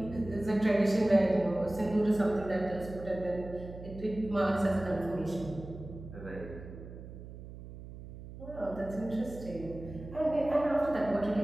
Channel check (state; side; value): noise; right; hum, 13 dB below the sound